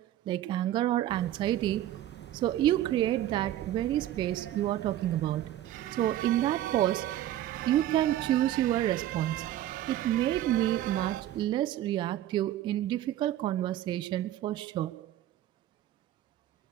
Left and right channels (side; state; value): left; quieter; 13.0 dB